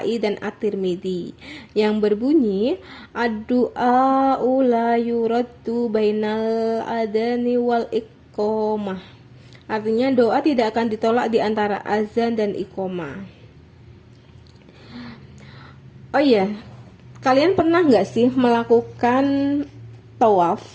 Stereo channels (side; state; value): both; identical; correlation 1.00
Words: dan At-Tirmidzi yang berbunyi ad-du'a la yuraddu bainal adani wal iqomah. Artinya doa tidak akan ditolak di antara azan dan iqomah. Oh iya, kalian pernah nggak sih melakukan